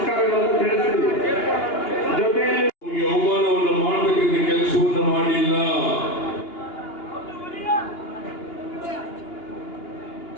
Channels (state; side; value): late; right; 2.8 ms